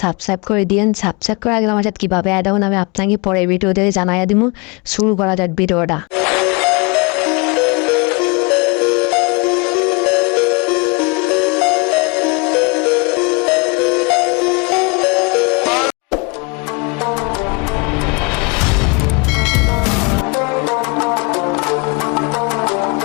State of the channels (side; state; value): right; quieter; 29.4 dB